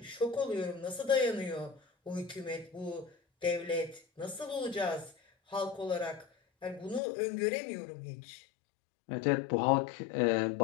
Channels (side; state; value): right; drops out; at 7.0 s